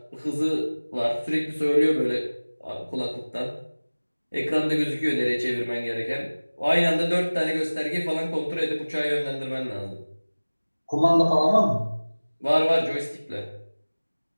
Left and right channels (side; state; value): both; inverted; correlation -1.00